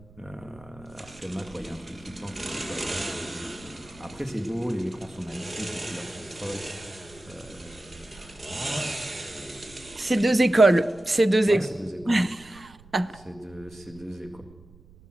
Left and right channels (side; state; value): right; noise; rumble, 23 dB below the sound